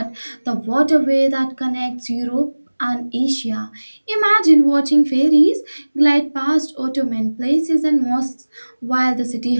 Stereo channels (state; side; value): inverted; both; correlation -1.00